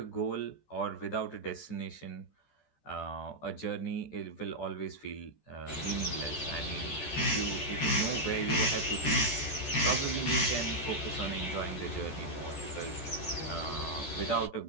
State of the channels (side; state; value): right; late; 13 ms